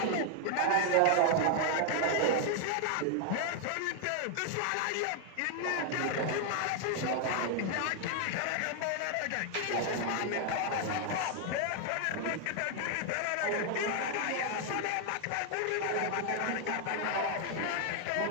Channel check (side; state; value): both; different; correlation 0.00